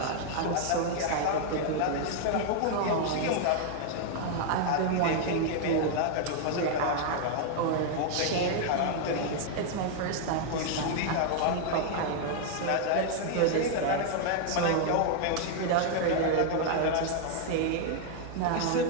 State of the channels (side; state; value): both; different; correlation 0.00